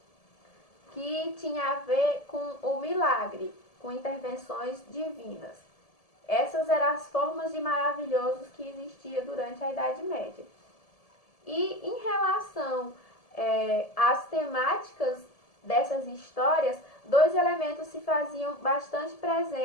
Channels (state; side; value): late; right; 1.7 ms